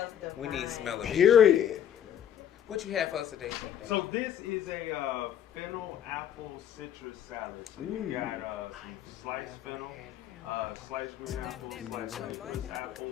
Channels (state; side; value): quieter; right; 9.8 dB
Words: divine. We need to smell it. Period. What you have for us today, Chef Daniel? So this is a fennel apple citrus salad. So you got some sliced fennel, sliced green apples, sliced citrus